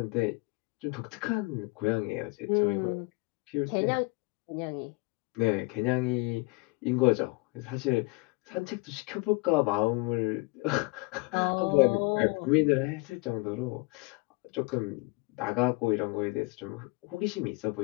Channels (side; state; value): right; quieter; 26.0 dB